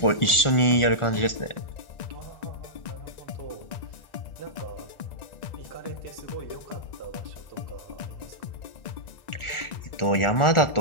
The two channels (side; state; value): right; late; 1.4 ms